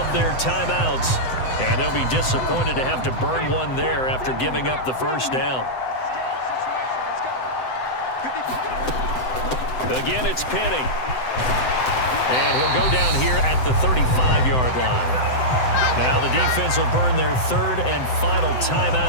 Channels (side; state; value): right; late; 7.8 ms